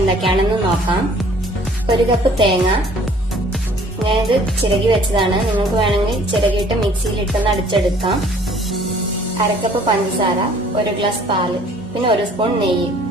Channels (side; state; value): both; normal; correlation 0.55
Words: നോക്കാം. 1 കപ്പ് തേങ്ങ, ഞാനിത് ചിരകി വെച്ചതാണ്. നിങ്ങൾക്ക് വേണമെങ്കിൽ ചിരകിയിട്ട് മിക്സിയിലിട്ടൊന്ന് അടിച്ചെടുക്കാം. 1/2 കപ്പ് പഞ്ചസാര, 1 ഗ്ലാസ് പാല്, പിന്നെ 1 സ്പൂൺ നെയ്യ്.